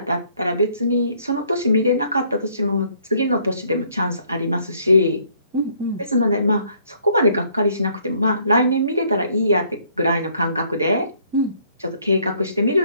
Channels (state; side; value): inverted; both; correlation -0.64